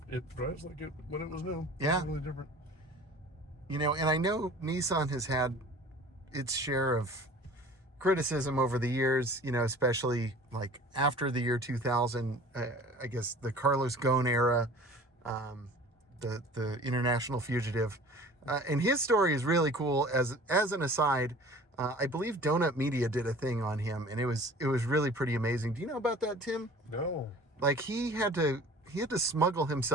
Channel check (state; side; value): normal; both; correlation 0.44